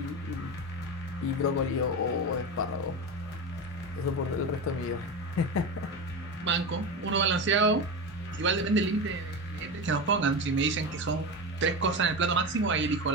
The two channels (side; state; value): both; normal; correlation 0.21